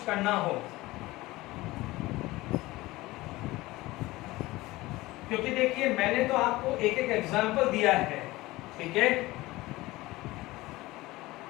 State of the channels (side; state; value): right; quieter; 19.4 dB